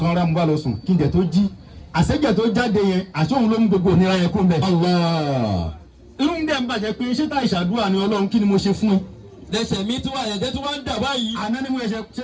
rà mo bá lọ sùn kí n jẹ tó jí àṣẹjẹ tó jáde yẹn àṣọhun ló mú gbogbo ònira yẹn kó ń bẹ. irú ń dẹ̀ ń bàjẹ́ pé ṣé tá ìṣàdúrà ni ọlọ́run kí ni mo ṣe fún ẹ. lẹ́sẹ̀ mi tí wà ẹ̀jẹ̀ tí wọ́n ń dà báyìí. àná ni mo ṣe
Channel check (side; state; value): both; identical; correlation 1.00